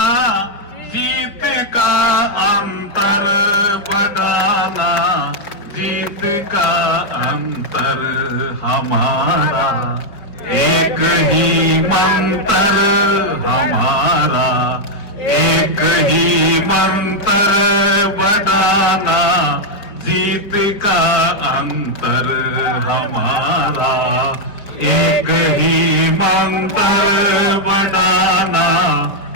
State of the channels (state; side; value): late; right; 4.8 ms